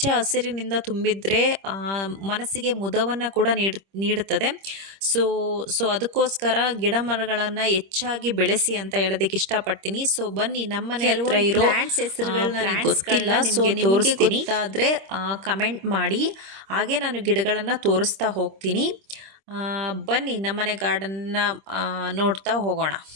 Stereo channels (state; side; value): late; left; 26 ms